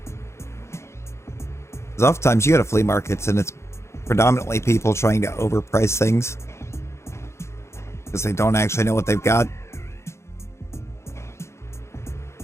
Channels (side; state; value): right; late; 0.13 ms